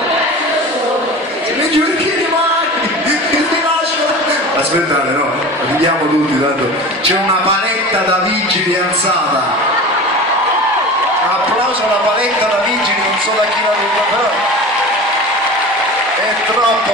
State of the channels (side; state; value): both; normal; correlation 0.34